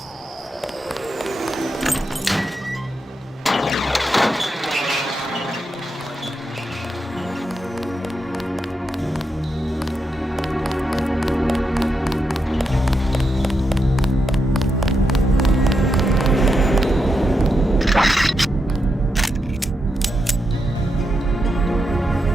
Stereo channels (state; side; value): normal; both; correlation 0.84